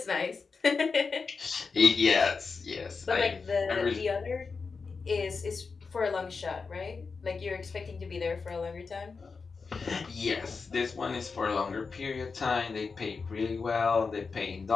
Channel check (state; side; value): quieter; right; 4.8 dB